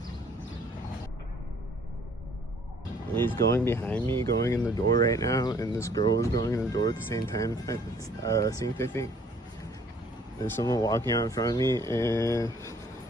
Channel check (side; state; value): both; normal; correlation 0.59